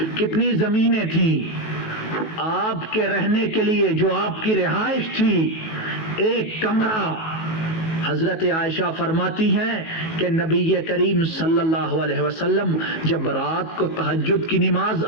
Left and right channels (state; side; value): late; right; 19 ms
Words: کتنی زمینیں تھیں۔ آپ کے رہنے کے لیے جو آپ کی رہائش تھی، ایک کمرہ، حضرت عائشہ فرماتی ہیں کہ نبی کریم صلی اللہ علیہ وسلم جب رات کو تہجد کی نماز